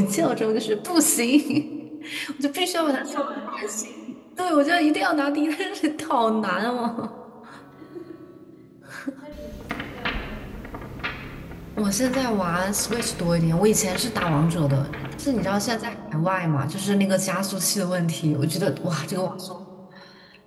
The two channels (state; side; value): identical; both; correlation 1.00